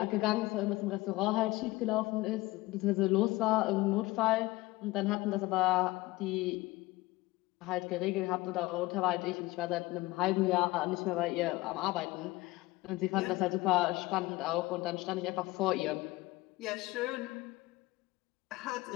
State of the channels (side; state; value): right; quieter; 20.0 dB